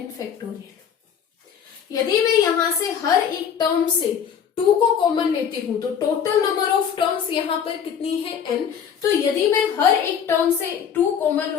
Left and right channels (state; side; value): quieter; right; 7.8 dB